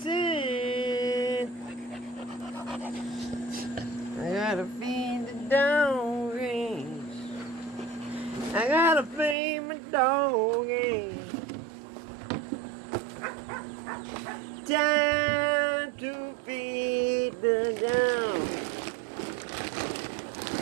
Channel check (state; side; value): drops out; left; at 9.3 s